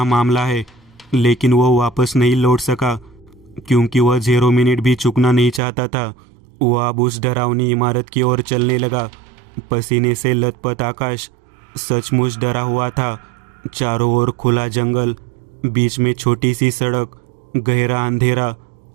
मामला है, लेकिन वह वापस नहीं लौट सका क्योंकि वह 0 मिनट भी चुकना नहीं चाहता था। वह अब उस डरावनी इमारत की ओर चलने लगा। पसीने से लथपथ आकाश सचमुच डरा हुआ था। चारों ओर खुला जंगल, बीच में छोटी सी सड़क, गहरा अंधेरा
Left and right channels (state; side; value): drops out; left; at 5.6 s